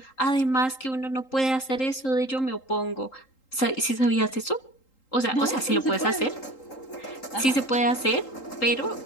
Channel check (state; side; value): late; right; 3.8 ms